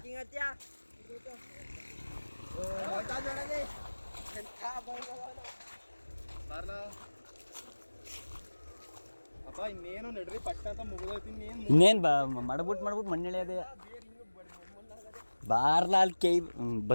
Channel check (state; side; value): inverted; both; correlation -1.00